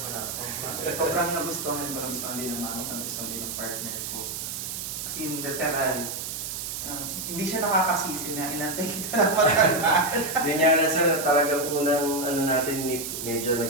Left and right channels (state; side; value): noise; right; hiss, 5 dB below the sound